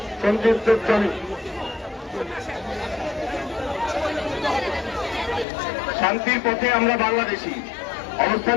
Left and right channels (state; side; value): drops out; right; at 5.5 s